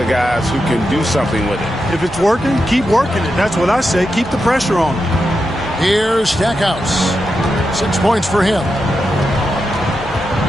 guys who can do something with it. If it's working, keep working it. That's what I say. Keep the pressure on him. Here's Stackhouse. 6 points for him.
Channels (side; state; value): both; normal; correlation 0.87